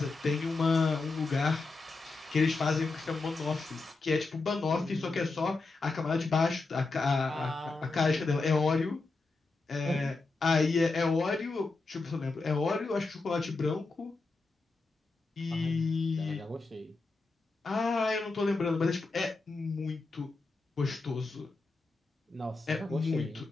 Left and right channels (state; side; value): quieter; right; 3.7 dB